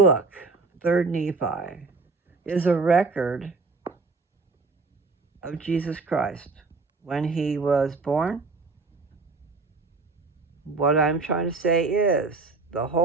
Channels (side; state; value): left; quieter; 4.0 dB